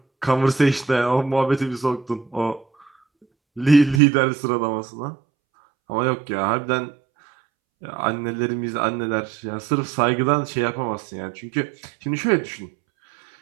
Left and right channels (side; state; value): left; drops out; at 4.0 s